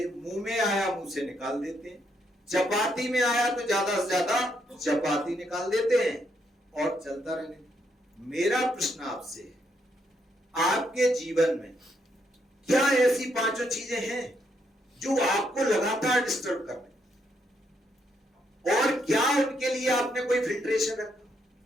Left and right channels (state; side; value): normal; both; correlation 0.76